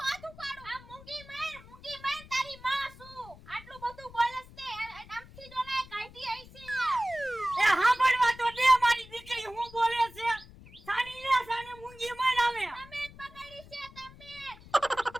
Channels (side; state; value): left; noise; rumble, 20 dB below the sound